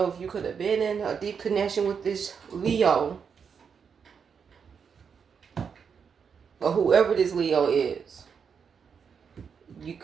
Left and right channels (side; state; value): left; quieter; 6.5 dB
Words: if you could have been in a deep connection with this Leo, or whoever this Leo is. You